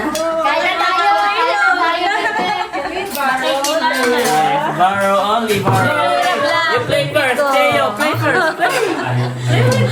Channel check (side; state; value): both; identical; correlation 1.00